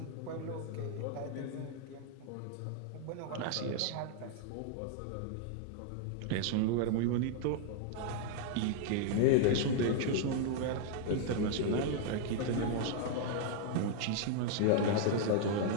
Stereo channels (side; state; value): both; different; correlation 0.00